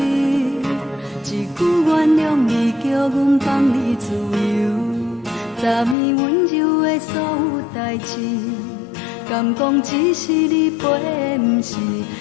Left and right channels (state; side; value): drops out; right; at 6.0 s